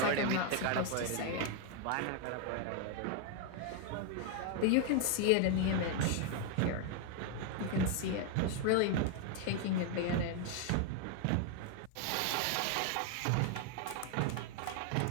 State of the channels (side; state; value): both; different; correlation 0.01